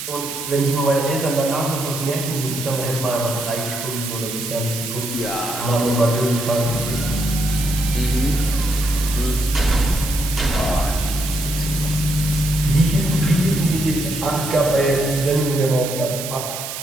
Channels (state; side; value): noise; right; hiss, 7 dB below the sound